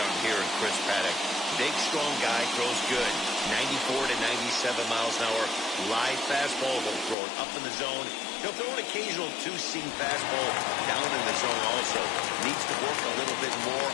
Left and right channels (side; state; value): right; drops out; at 7.2 s